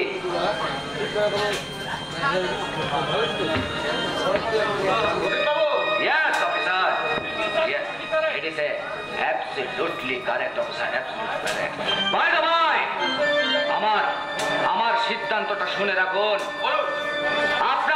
Yes, officer. Yes, it is absolutely correct, officer. Absolutely correct. By the way, আমার সিদ্ধান্তটা শুনে রাখুন।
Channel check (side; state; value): both; identical; correlation 1.00